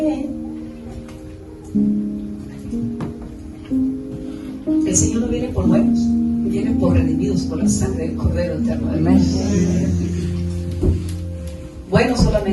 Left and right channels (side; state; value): both; identical; correlation 1.00